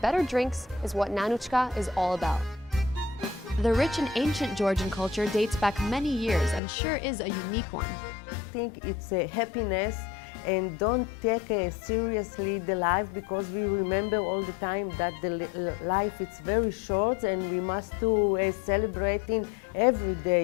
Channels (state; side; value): drops out; right; at 6.6 s